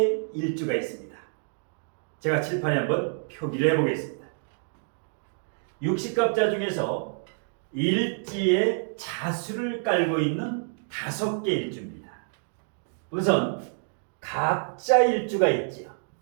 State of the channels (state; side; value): silent; left; 56 dB below the other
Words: 일주가 있습니다. 제가 칠판에 한번 표기를 해보겠습니다. 육식갑자 중에서 일지에 자수를 깔고 있는 5개 일주입니다. 우선 갑자일주가 있지요.